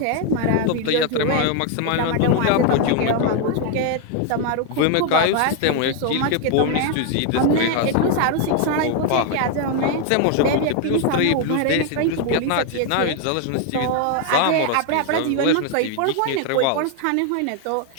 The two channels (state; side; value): different; both; correlation 0.00